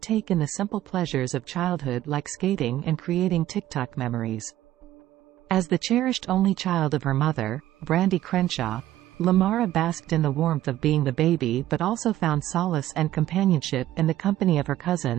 in the simple pleasures of childhood like skating and creating TikTok memories. As the cherished only child of her mother, Brandy Crenshaw, Lamara basked in the warmth of being the baby but also found solace and companionship in the company of her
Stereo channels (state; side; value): quieter; left; 13.9 dB